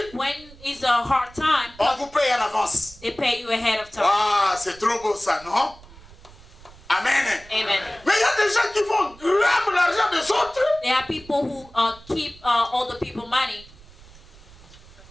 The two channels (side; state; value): right; noise; rumble, 22 dB below the sound